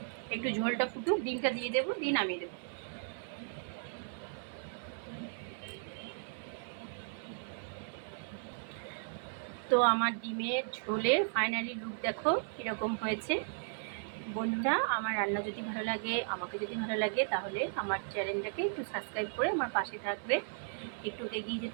একটু ঝোলটা ফুটুক, ডিমটা দিয়ে দেবো, দিয়ে নামিয়ে দেবো। তো আমার ডিমের ঝোলের ফাইনালি লুক দেখো কীরকম হয়েছে। বন্ধুরা, আমার রান্না যদি ভালো লাগে, আমাকে যদি ভালো লাগে, তাহলে আমার চ্যানেলটাকে একটু সাবস্ক্রাইব করে আমার পাশে থাকবে, একটু এগিয়ে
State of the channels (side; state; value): left; silent; 54 dB below the other